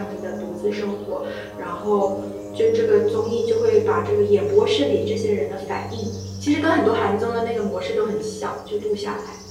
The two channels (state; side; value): identical; both; correlation 1.00